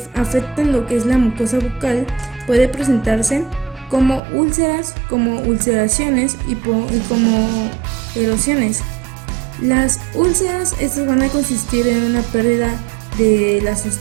afectan lo que es la mucosa bucal puede presentarse como úlceras, como ulceraciones y como erosiones. Las úlceras estas van a consistir en una pérdida de la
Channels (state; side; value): drops out; left; at 4.2 s